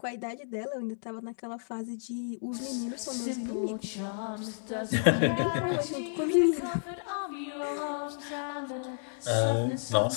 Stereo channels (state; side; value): silent; right; digital silence